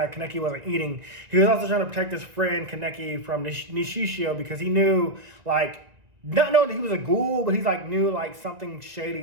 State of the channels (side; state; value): left; late; 2.0 ms